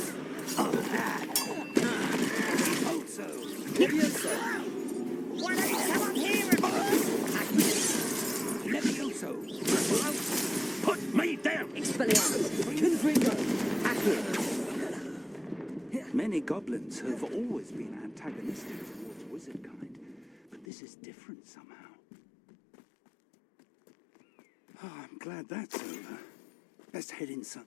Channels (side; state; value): right; drops out; at 20.7 s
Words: Levioso. Why don't you come up here and... Levioso. Put me down. Expelliarmus. Confringo. Accio. Many goblins have always been antagonistic towards wizard kind, but this is different somehow. Oh, I'm glad that's over. Let's head inside.